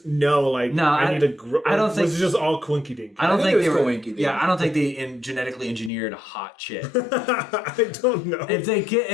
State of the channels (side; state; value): right; drops out; at 5.9 s